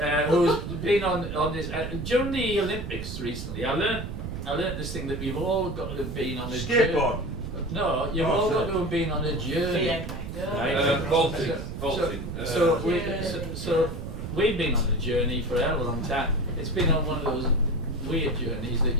who's been on this during the Olympics recently. I learnt this thing that we've all got to have been on a journey. Skateboard. No, you've all got to have been on a journey. Yeah. Right? Vaulting. So we've been on a journey for a hell of a long time. It's been on one of those weird journeys that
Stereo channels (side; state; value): right; noise; rumble, 7 dB below the sound